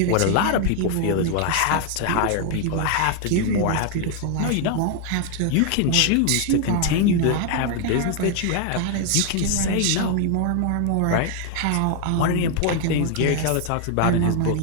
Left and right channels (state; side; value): different; both; correlation 0.00